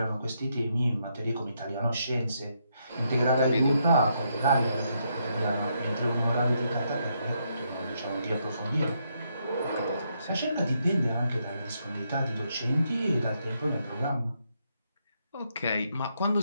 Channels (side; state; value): both; inverted; correlation -0.77